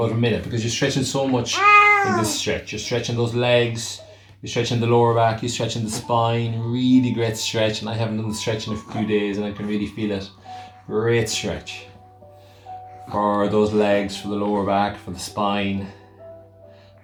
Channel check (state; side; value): identical; both; correlation 1.00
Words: a minute, because you're stretching so much in this stretch. You're stretching those legs, you're stretching the lower back, you're stretching the spine. Really great stretch, and I haven't done the stretch in a few days and I can really feel it. Great stretch for those legs, for the lower back, for the spine,